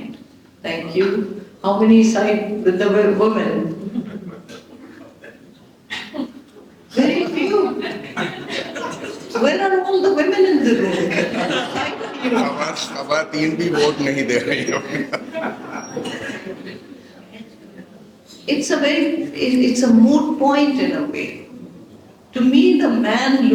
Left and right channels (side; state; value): both; identical; correlation 1.00